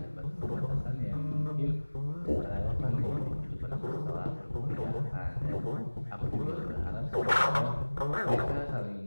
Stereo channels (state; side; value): inverted; both; correlation -1.00